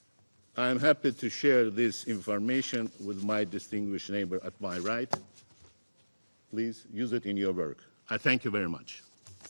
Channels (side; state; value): both; inverted; correlation -1.00